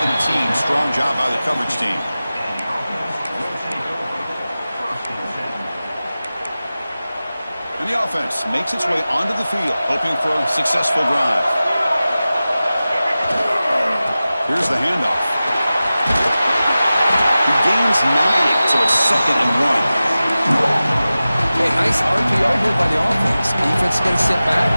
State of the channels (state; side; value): inverted; both; correlation -0.96